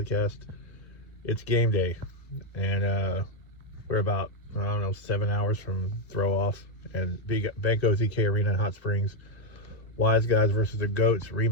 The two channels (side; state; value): right; late; 1.2 ms